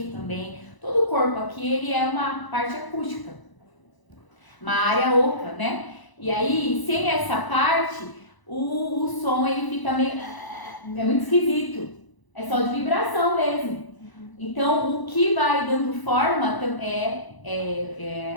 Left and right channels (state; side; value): late; right; 1.0 ms